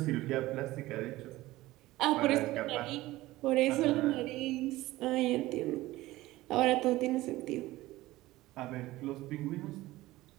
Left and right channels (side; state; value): left; quieter; 17.7 dB